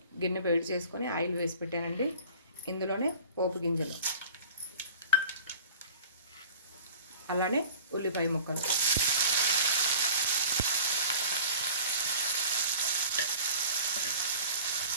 గిన్నె వేడి చేసుకొని ఆయిల్ వేసి పెట్టానండి. ఇందులోనే పోపు గింజలు, అలానే ఉల్లిపాయ ముక్కలు,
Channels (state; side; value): inverted; both; correlation -0.42